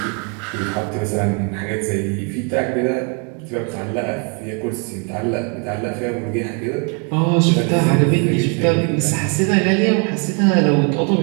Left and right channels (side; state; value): left; quieter; 36.8 dB